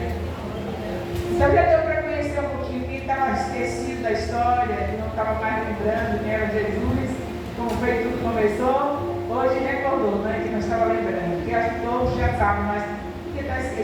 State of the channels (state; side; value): identical; both; correlation 1.00